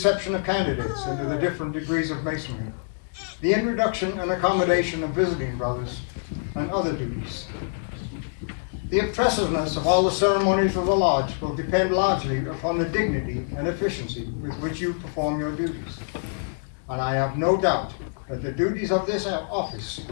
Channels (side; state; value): right; silent; digital silence